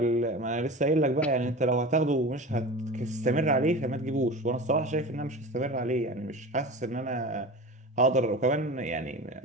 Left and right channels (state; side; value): normal; both; correlation 0.32